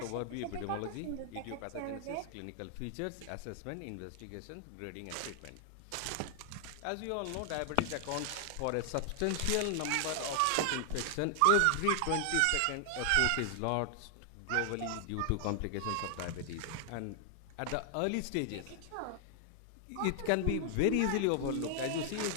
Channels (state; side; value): different; both; correlation 0.00